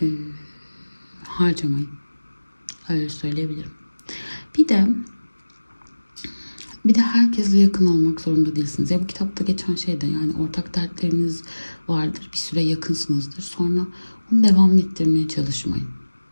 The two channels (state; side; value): inverted; both; correlation -1.00